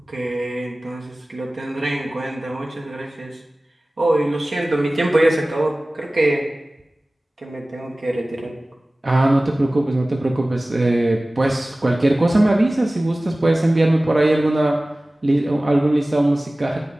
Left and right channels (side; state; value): both; normal; correlation 0.98